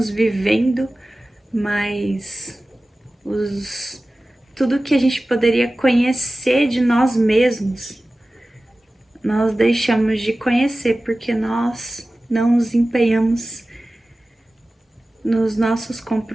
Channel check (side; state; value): both; normal; correlation 0.96